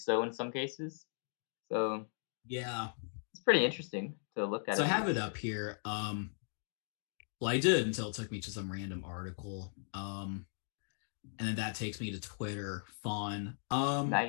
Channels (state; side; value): silent; right; digital silence